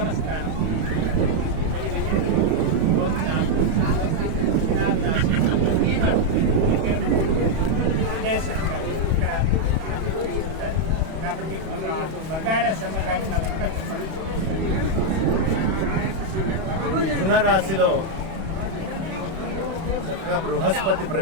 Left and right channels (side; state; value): left; late; 31 ms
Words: స్థానం కాబట్టి బంగారా శర్మ గారి నా దగ్గర చెప్పాలి. మిథున రాశిలో చక్కగా బృహస్పతి